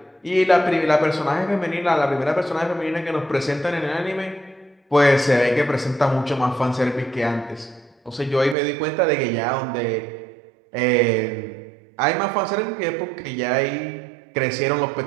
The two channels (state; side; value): drops out; left; at 8.6 s